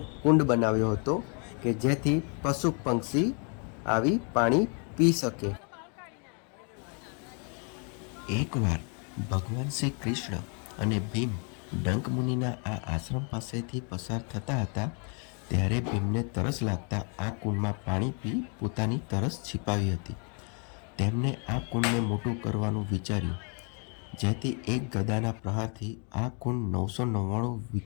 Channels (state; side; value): quieter; right; 38.5 dB